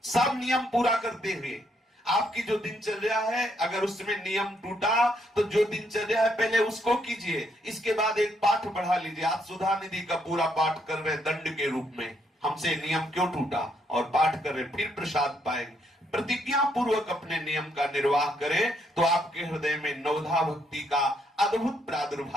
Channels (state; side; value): normal; both; correlation 0.74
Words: सब नियम पूरा करते हुए आपकी जो दिनचर्या है, अगर उसमें नियम टूटा तो जो दिनचर्या है पहले उसको कीजिए, इसके बाद एक पाठ बढ़ा लीजिए। आप सुधा निधि का पूरा पाठ कर रहे दंड के रूप में, हमसे नियम क्यों टूटा, और पाठ कर रहे, फिर प्रसाद पाएंगे। प्रतिज्ञा पूर्वक अपने नियम का निर्वाह करें तो आपके हृदय में नवधा भक्ति का अद्भुत